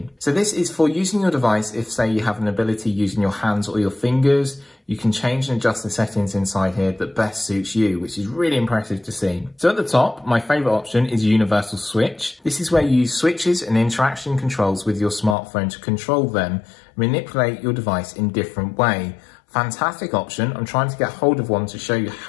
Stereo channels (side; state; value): right; drops out; at 15.4 s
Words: So this is for using your device if, say, you have an ability using your hands or your fingers. you can change and adjust the settings inside here that best suits you, which is really impressive to see. So at the top, my favorite option is Universal Switch. This is where you use switches and interaction controls with your smartphone to control them, manipulate your device in different way. Fantastic option. I'm trying to get hold of one to show you